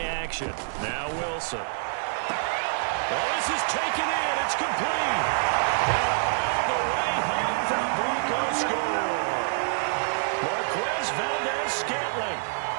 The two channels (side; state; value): left; silent; digital silence